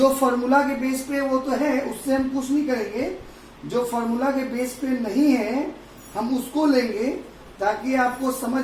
फॉर्मूला के बेस पे वो तो है, उससे हम कुछ नहीं करेंगे। जो फॉर्मूला के बेस पे नहीं है हम उसको लेंगे ताकि आपको समझ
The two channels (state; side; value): identical; both; correlation 1.00